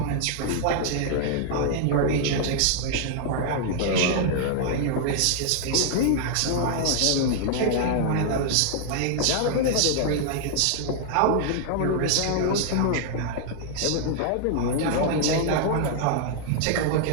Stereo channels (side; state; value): both; different; correlation -0.01